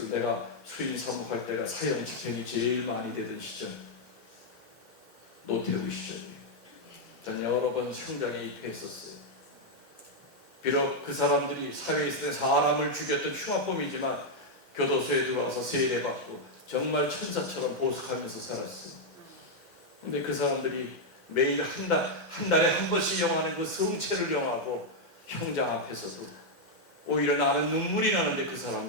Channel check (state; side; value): normal; both; correlation -0.01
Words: 내가 수인 사목할 때가 사형 집행이 제일 많이 되던 시절, 노태우 시절이에요. 저는 여러 번 현장에 입회했었어요. 비록 그 사람들이 사회에 있을 때 사람을 죽였던 흉악범이지만 교도소에 들어와서 세례받고 정말 천사처럼 보석하면서 살았어요. 근데 그 사람들이 매일 한 달에 한 번씩 영하는 그 성체를 영하고 형장 앞에서도 오히려 나는 눈물이 나는데 그